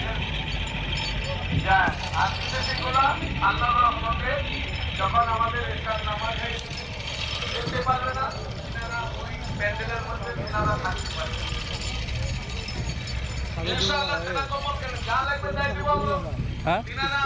আর বিদেশিগুলা আল্লাহ রহমতে যখন আমাদের এখান নামাজ যেতে পারবে না, তিনারা ওই প্যান্ডেলের মধ্যে তিনারা থাকতে পারবে। ইনশাআল্লাহ সেটা কমন কেন যা লাগবে তাই দিব আমরা। তিনারা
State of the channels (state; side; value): identical; both; correlation 1.00